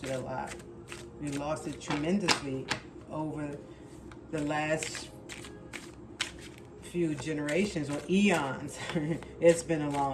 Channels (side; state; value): both; identical; correlation 1.00